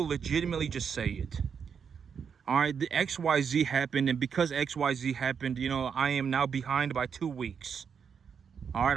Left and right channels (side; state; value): left; quieter; 6.8 dB